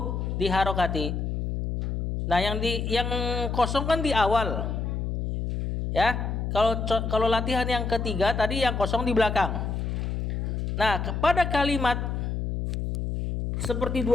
diharokati. Nah, yang kosong kan di awal. Ya, kalau latihan yang ketiga tadi yang kosong di belakang. Nah, kepada kalimat seperti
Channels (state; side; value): noise; left; hum, 2 dB below the sound